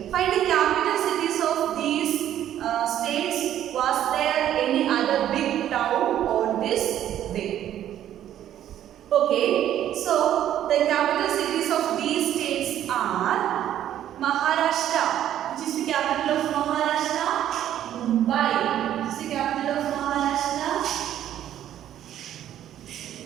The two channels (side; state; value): left; quieter; 11.3 dB